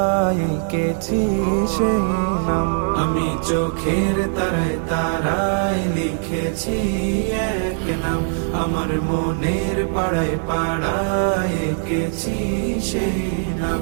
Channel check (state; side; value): silent; left; 65 dB below the other